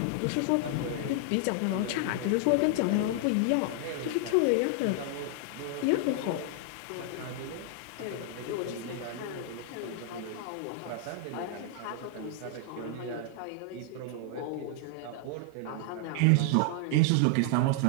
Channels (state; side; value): different; both; correlation 0.00